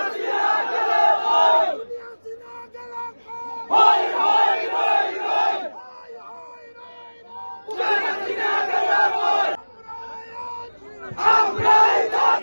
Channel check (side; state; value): both; inverted; correlation -1.00